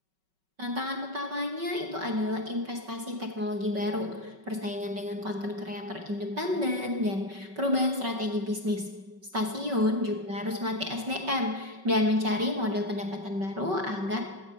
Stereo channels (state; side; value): late; left; 5.3 ms